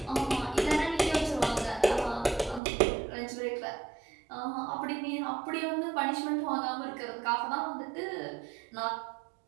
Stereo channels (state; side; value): drops out; left; at 2.6 s